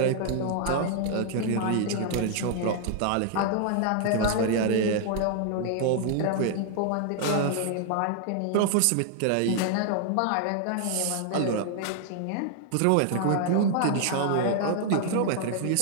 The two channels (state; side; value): different; both; correlation 0.00